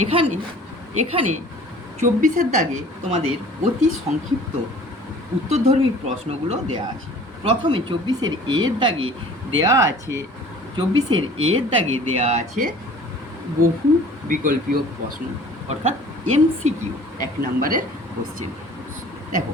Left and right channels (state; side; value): normal; both; correlation 0.48